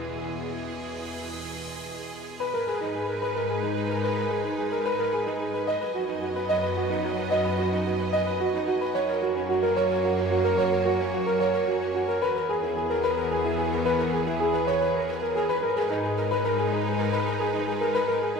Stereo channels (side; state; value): both; normal; correlation 0.52